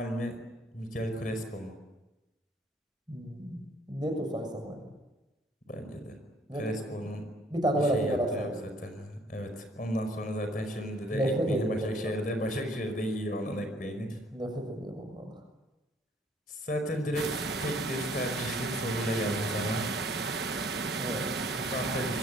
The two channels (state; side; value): normal; both; correlation 0.60